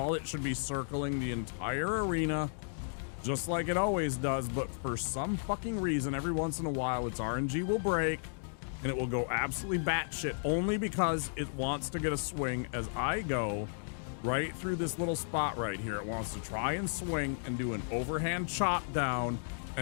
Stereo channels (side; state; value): right; silent; digital silence